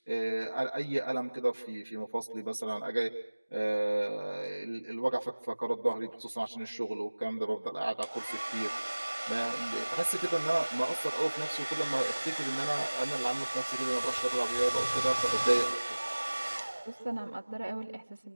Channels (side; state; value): both; inverted; correlation -1.00